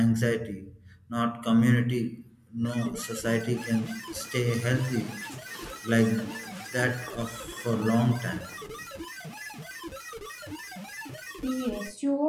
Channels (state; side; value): identical; both; correlation 1.00